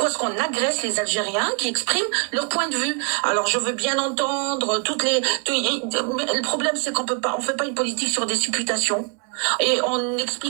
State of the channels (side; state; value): left; quieter; 37.7 dB